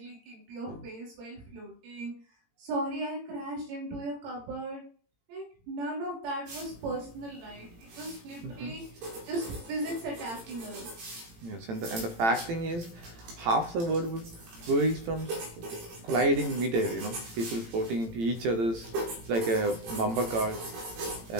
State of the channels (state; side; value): late; left; 18 ms